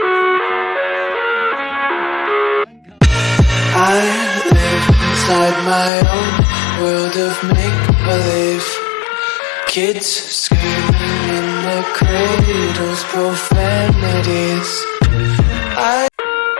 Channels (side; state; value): right; drops out; at 5.9 s